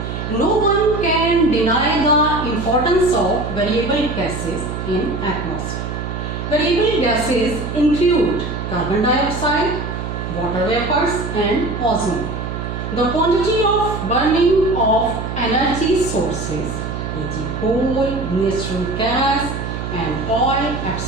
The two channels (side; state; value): right; noise; hum, 5 dB below the sound